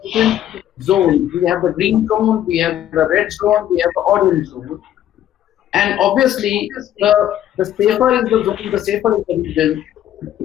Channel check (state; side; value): quieter; right; 11.6 dB